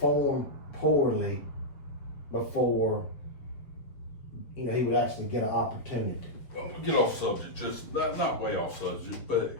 poorly before, he would actually get an opportunity. Well, we'll get off subject, just not way off subject, but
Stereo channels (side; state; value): right; late; 7.1 ms